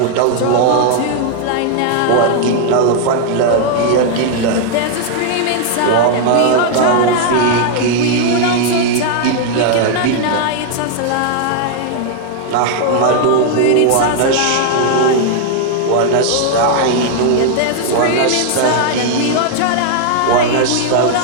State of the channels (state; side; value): different; both; correlation 0.00